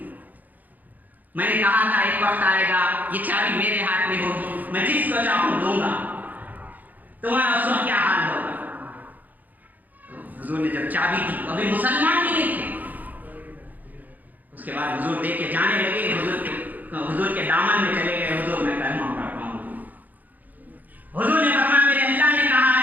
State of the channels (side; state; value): left; late; 0.082 ms